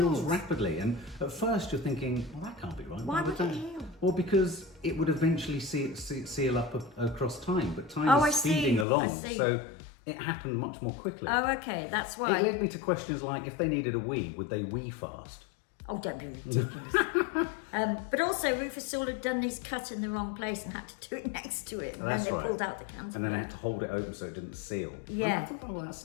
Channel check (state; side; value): drops out; right; at 8.8 s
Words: rapidly, and at first you're thinking, well, that can't be right. Why would it heal? Well, because it would eventually seal up across time, but time is speeding along, so it happened much more quickly. Oh, okay, that's why. It led me to questions like, if they needed a wee, would they wee fast? Oh, don't be ridiculous. But also, Rufus Sewell had done his cut in the wrong place and had to do it next to it. And then they pulled out the cantaloupe. And then they had to hold it open so it didn't seal. Yeah. I thought all that